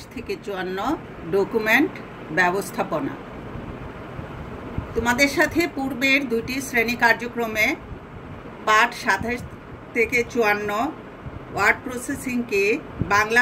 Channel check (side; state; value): both; identical; correlation 1.00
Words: থেকে 54 ডকুমেন্ট ব্যবস্থাপনা। তোমাদের সাথে পূর্বের দুটি শ্রেণী কার্যক্রমে পাঠ 27 থেকে 54 ওয়ার্ড প্রসেসিং কি, বাংলা